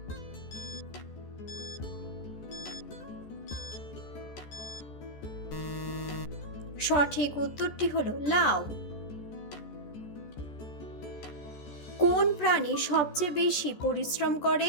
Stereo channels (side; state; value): right; late; 13 ms